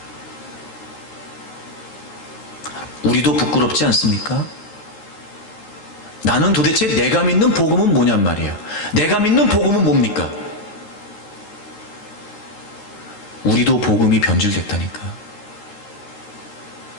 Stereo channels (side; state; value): right; late; 13 ms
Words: 우리도 부끄럽지 않습니까? 나는 도대체 내가 믿는 복음은 뭐냔 말이에요. 내가 믿는 복음은 뭡니까? 우리도 복음이 변질됐다니까.